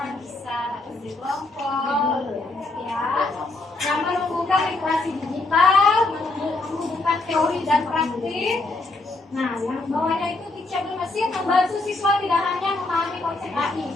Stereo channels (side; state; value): right; quieter; 3.1 dB